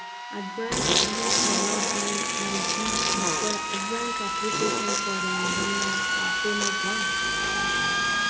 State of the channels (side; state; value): both; identical; correlation 1.00